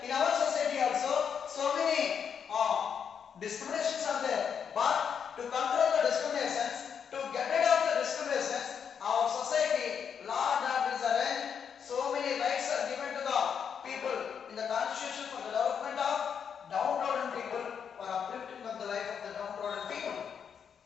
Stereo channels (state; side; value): quieter; right; 7.3 dB